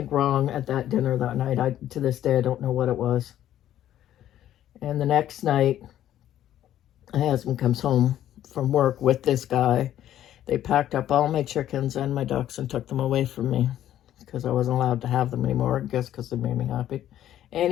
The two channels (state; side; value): quieter; right; 11.9 dB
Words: wrong at that dinner that night. To this day, I don't know what it was. And the next night, my husband comes home from work with this guy. They packed up all my chickens and my ducks and took them away from me because I wasn't allowed to have them anymore, I guess because they made me happy.